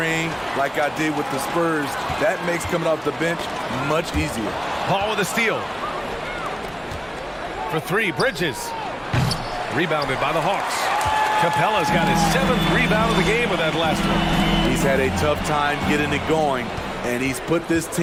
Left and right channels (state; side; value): identical; both; correlation 1.00